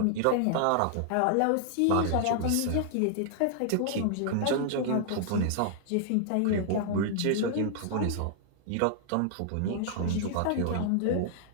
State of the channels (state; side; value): different; both; correlation -0.01